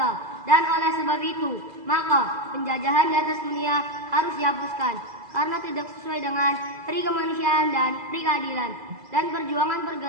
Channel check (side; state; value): left; late; 2.0 ms